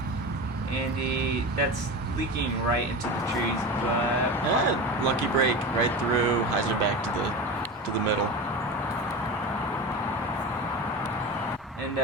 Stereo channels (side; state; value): both; normal; correlation 0.27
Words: Andy, that's leaking right into the trees, but Lucky break right through, hyzer back to the middle. and